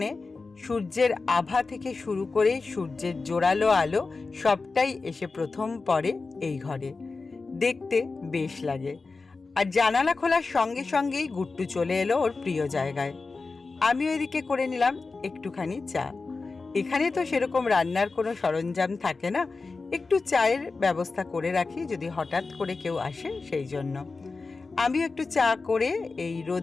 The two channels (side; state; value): right; quieter; 4.0 dB